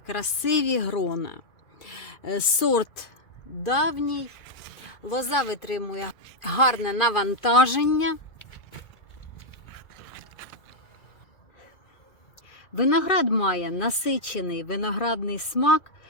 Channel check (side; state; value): right; late; 2.5 ms